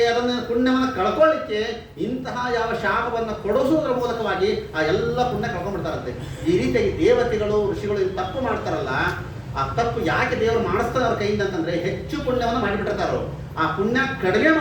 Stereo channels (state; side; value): identical; both; correlation 1.00